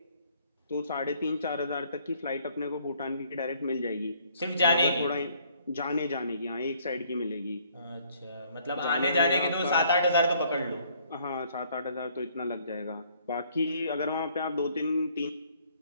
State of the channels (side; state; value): both; inverted; correlation -0.63